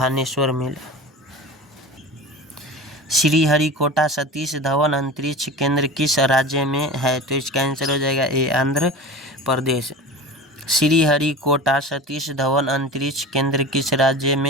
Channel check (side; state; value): both; normal; correlation 0.33